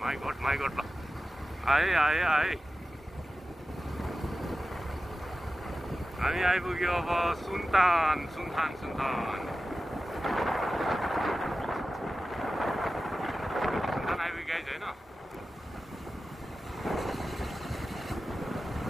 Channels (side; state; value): both; normal; correlation 0.94